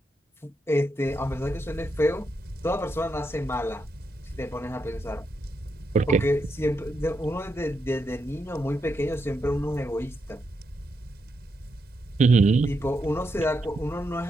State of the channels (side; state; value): both; normal; correlation 0.82